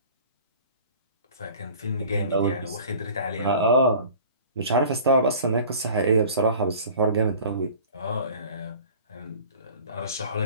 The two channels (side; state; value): both; inverted; correlation -0.44